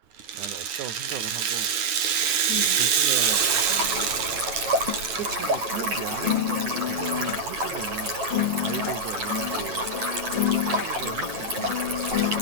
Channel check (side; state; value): left; late; 9.5 ms